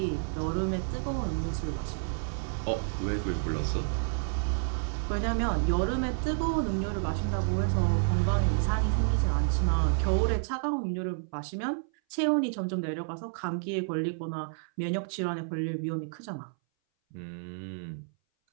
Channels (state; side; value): silent; left; 58 dB below the other